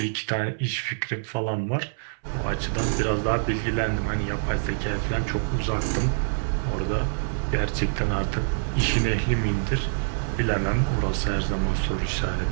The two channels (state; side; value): silent; left; 61 dB below the other